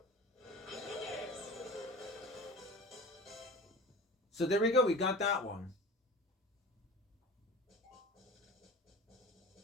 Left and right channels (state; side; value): normal; both; correlation 0.36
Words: So there we go. We got that one.